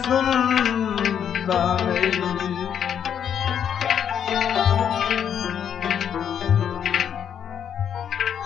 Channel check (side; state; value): right; quieter; 8.6 dB